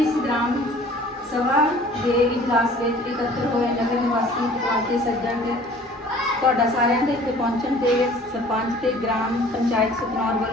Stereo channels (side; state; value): both; normal; correlation 0.49